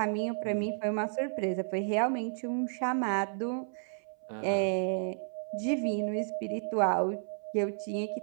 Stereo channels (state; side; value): silent; left; 56 dB below the other